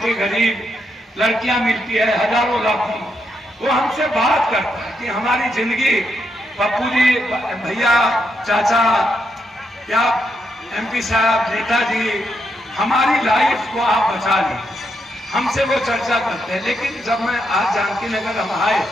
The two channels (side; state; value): both; normal; correlation 0.80